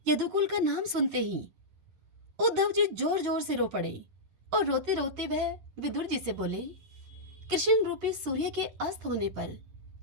यदुकुल का नाम सुनते ही उद्धव जी जोर जोर से रो पड़े और रोते रोते वह विदुर जी से बोले, कृष्ण रूपी सूर्य के अस्त होने पर,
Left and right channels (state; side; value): late; left; 11 ms